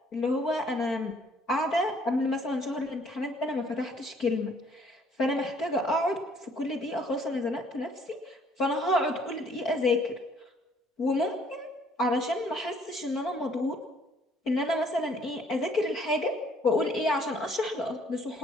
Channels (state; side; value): normal; both; correlation 0.61